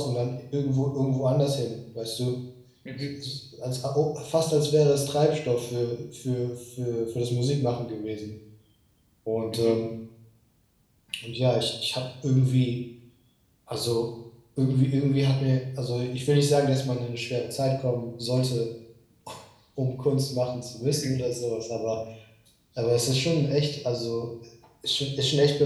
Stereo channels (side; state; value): both; identical; correlation 1.00